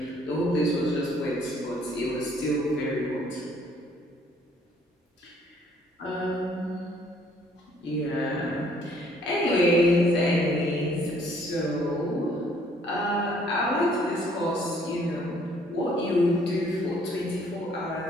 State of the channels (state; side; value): normal; both; correlation 0.62